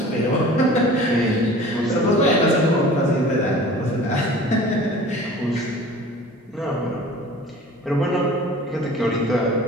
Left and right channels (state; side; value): normal; both; correlation 0.43